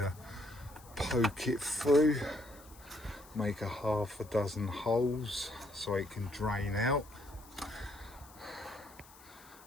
poke it through. Make a half a dozen holes so it can drain out,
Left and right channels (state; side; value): noise; left; hiss, 22 dB below the sound